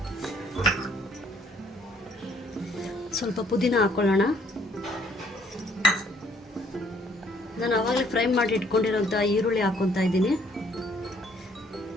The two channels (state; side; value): normal; both; correlation 0.64